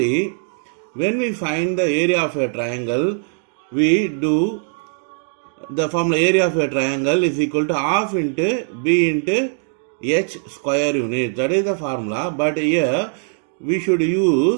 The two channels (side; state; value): left; silent; 60 dB below the other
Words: when we find the area of a triangle, we do the formula area of a triangle is equal to half into b into h square unit. That is the formula. But here we should